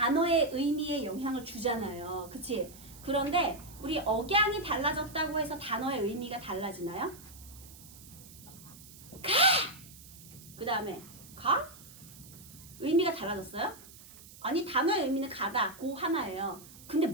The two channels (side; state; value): right; noise; hiss, 19 dB below the sound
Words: 의미에 영향을 주잖아요. 그치? 그런데 우리 억양이 달라졌다고 해서 단어의 의미가 달라지나요? 가! 그 다음에 가? 의미가 달라졌어요? 아니 단어의 의미는 가다 고 하나예요. 근데